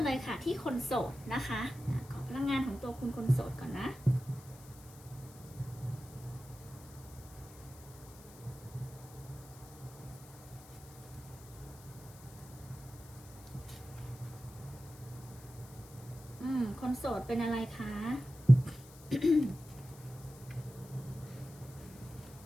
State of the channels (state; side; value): noise; left; hiss, 20 dB below the sound